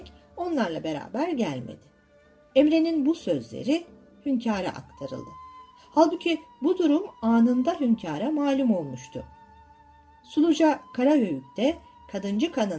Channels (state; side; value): identical; both; correlation 1.00